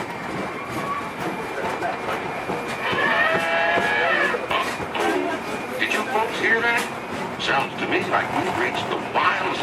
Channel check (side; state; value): both; identical; correlation 1.00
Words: Did you folks hear that? Sounds to me like we've reached the wilds